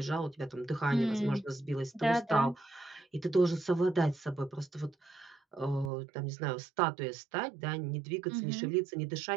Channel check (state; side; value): drops out; left; at 5.9 s